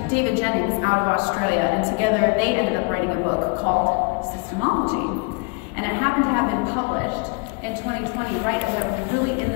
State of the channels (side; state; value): right; quieter; 32.7 dB